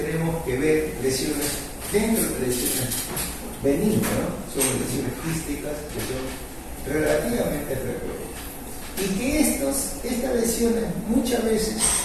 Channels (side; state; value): both; identical; correlation 1.00